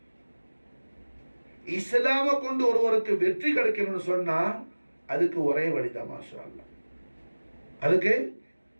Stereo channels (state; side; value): inverted; both; correlation -1.00